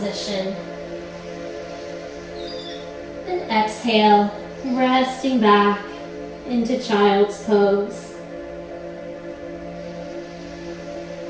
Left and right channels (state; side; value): identical; both; correlation 1.00